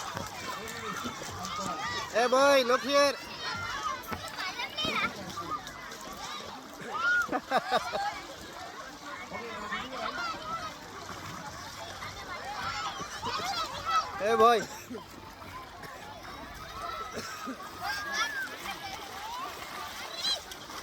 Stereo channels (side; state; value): both; identical; correlation 1.00